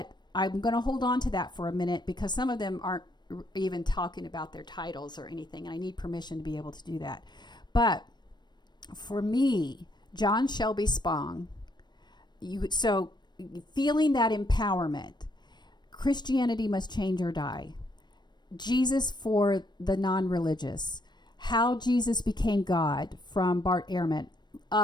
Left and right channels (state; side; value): late; right; 0.21 ms